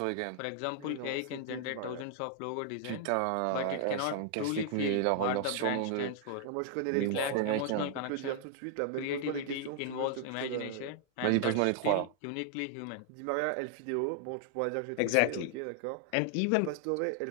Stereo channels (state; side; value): different; both; correlation 0.00